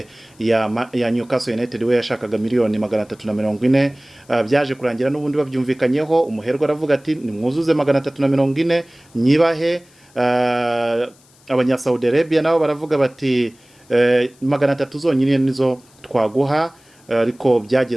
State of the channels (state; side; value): noise; left; hiss, 30 dB below the sound